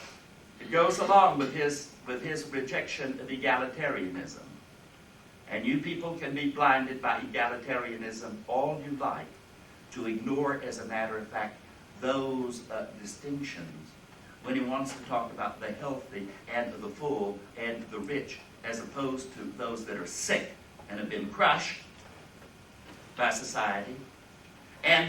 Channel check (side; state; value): both; identical; correlation 1.00